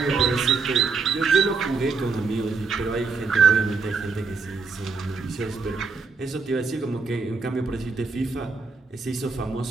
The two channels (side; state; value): left; quieter; 4.6 dB